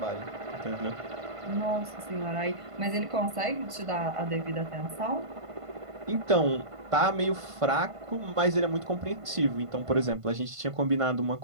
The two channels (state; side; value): late; left; 1.5 ms